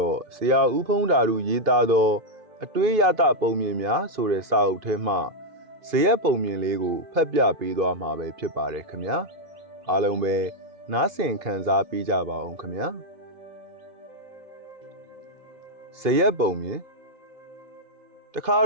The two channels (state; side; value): late; left; 2.5 ms